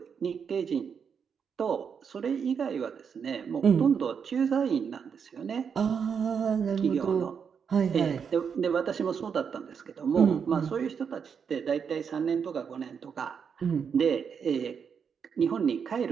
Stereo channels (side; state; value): left; quieter; 6.7 dB